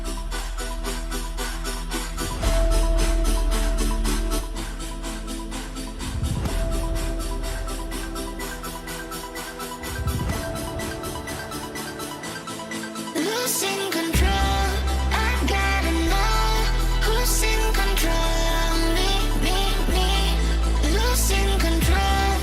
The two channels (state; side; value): identical; both; correlation 1.00